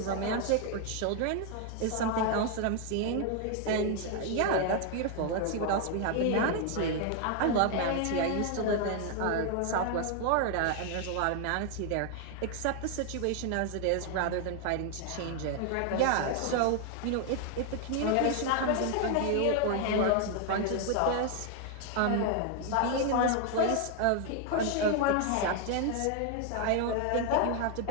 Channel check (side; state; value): both; different; correlation 0.00